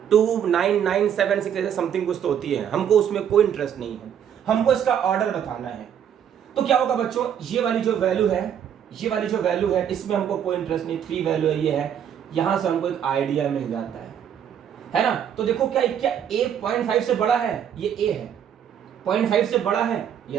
29976 ऐसे समथिंग कुछ तो होती है। हमको उसमें कोई इंटरेस्ट नहीं है, हमको इसका ऑर्डर बताना है। तो क्या होगा बच्चों, ये वाली जो वैल्यू है इसमें हमको कोई इंटरेस्ट नहीं, 3 वैल्यू है, ये है। यहां से हमको एक आइडिया मिल जाता है ना। तो देखो क्या ए 0.5 से बड़ा है? ये ए है। 0.5 से बड़ा है?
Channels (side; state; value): left; quieter; 8.9 dB